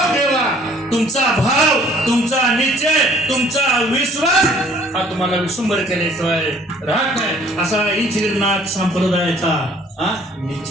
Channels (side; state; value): both; normal; correlation 0.57